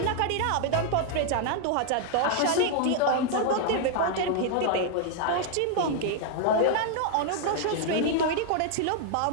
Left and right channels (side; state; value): both; different; correlation 0.00